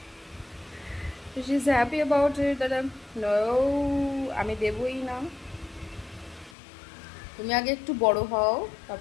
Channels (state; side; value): drops out; right; at 6.6 s